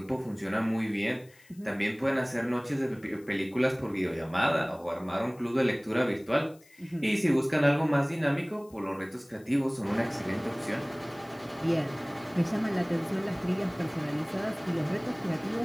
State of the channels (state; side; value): noise; left; hiss, 28 dB below the sound